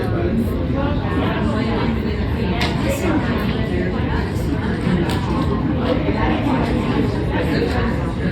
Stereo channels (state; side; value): identical; both; correlation 1.00